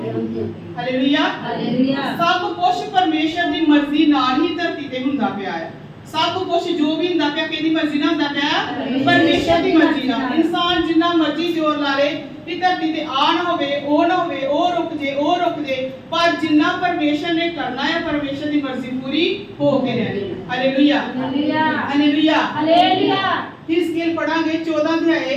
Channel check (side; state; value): both; identical; correlation 1.00